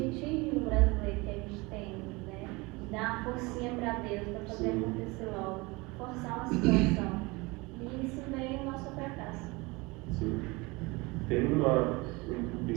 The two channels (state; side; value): quieter; left; 24.6 dB